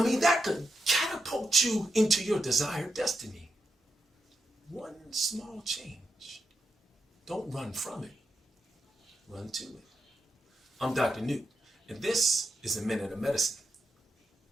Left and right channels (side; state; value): both; normal; correlation 0.85